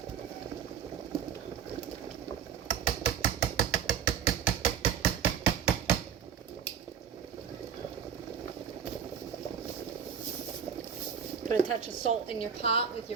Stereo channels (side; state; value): left; quieter; 7.5 dB